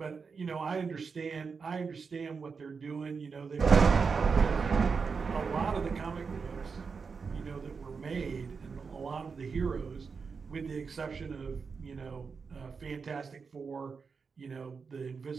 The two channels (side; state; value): left; quieter; 5.3 dB